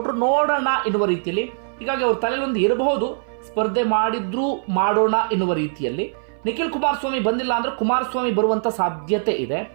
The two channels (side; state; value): left; silent; 58 dB below the other